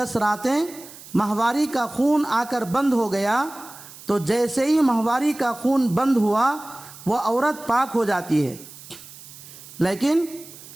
راتیں ماہواری کا خون آ کر بند ہو گیا تو جیسے ہی ماہواری کا خون بند ہوا وہ عورت پاک ہو جاتی ہے۔ لیکن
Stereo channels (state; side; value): noise; right; hiss, 18 dB below the sound